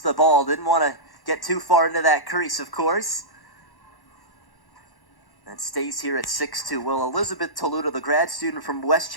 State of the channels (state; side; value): late; right; 1.1 ms